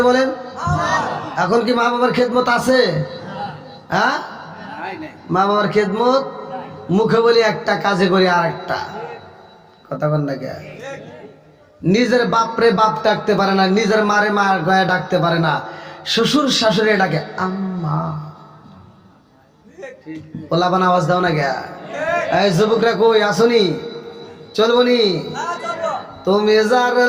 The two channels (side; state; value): both; identical; correlation 1.00